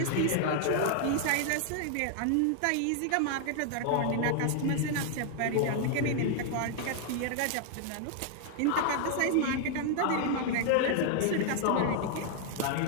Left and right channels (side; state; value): both; different; correlation 0.00